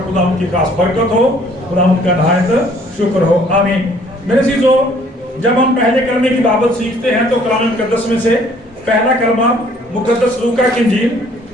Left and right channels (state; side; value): normal; both; correlation 0.59